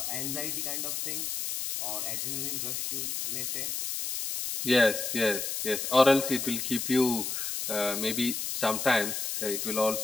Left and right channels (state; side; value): noise; left; hiss, 3 dB below the sound